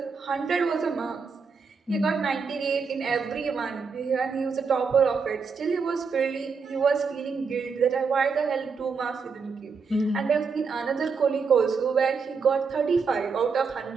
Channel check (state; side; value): quieter; left; 5.2 dB